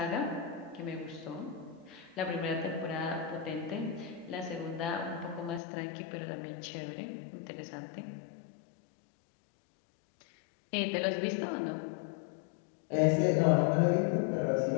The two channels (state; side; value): drops out; right; at 5.6 s